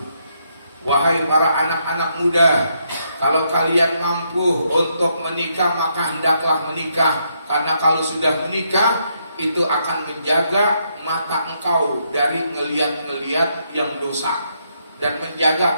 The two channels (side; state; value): both; inverted; correlation -0.76